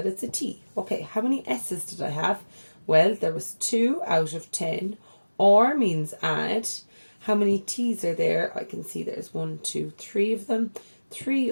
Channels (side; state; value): both; inverted; correlation -1.00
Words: it's a T. Okay, how many S's did I have? Well, there was 2 out of 10. Or means add. How many T's are there? I can see there's 1, 2, 3 of them. 3